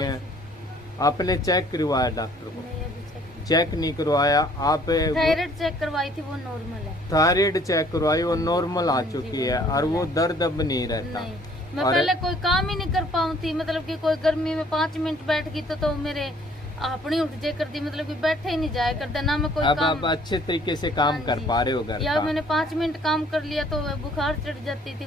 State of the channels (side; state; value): both; normal; correlation 0.58